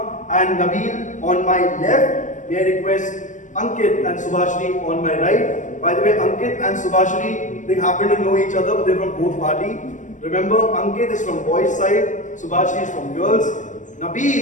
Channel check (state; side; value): late; right; 0.36 ms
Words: and Nabil on my left. May I request Ankit and Subhashri on my right. By the way, Ankit and Subhashri, they happen to know each other, but they're from both parties. Remember, Ankit is from boys' side, Subhashi is from girls.